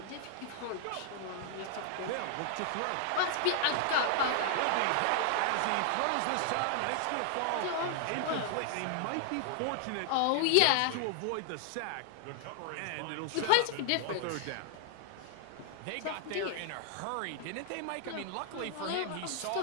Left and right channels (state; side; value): different; both; correlation 0.00